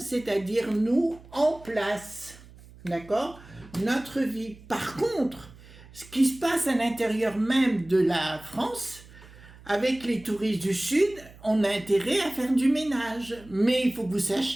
nous, en place. D'accord? Notre vie. Par contre, ce qui se passe à l'intérieur même de la France, avec les touristes du Sud, on a intérêt à faire du ménage. Mais il faut que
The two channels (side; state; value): right; noise; hum, 21 dB below the sound